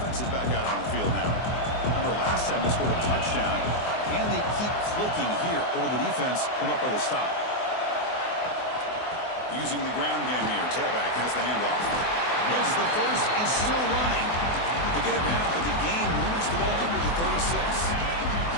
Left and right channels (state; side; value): late; right; 24 ms